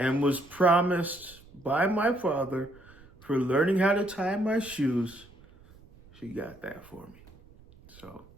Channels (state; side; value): noise; right; rumble, 24 dB below the sound